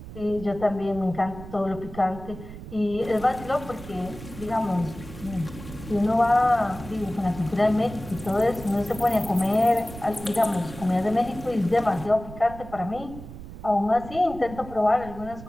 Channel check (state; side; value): noise; right; rumble, 14 dB below the sound